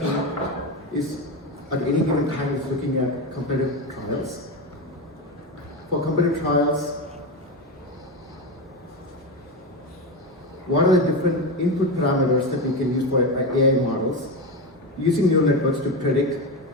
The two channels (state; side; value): normal; both; correlation 0.16